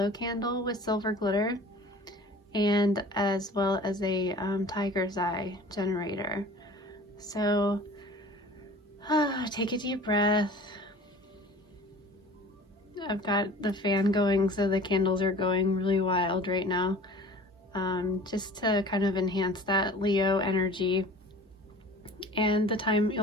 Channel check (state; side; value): normal; both; correlation 0.44